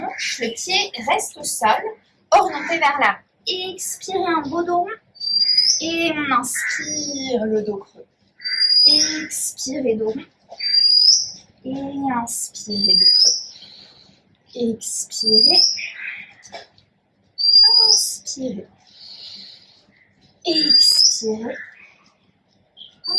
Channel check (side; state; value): both; identical; correlation 1.00